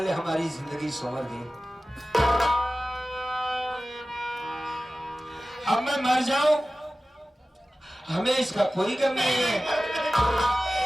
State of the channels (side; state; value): both; normal; correlation 0.96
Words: हमारी जिंदगी संवर गई। अब मैं मर जाऊं हमें इसका कोई गम नहीं है।